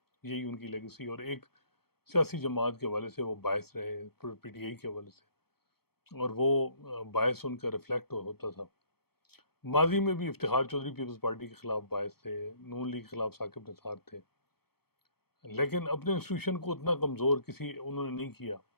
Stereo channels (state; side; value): late; right; 0.96 ms